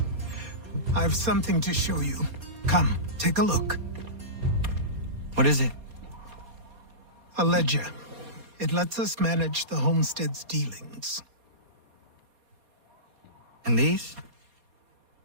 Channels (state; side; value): late; left; 4.2 ms